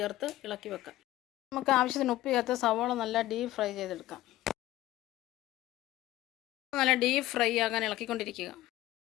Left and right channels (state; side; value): quieter; right; 15.7 dB